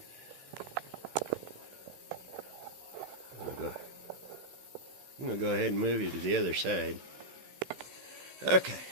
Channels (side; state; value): left; late; 16 ms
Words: I'm going to go ahead and move you to the other side. Okay,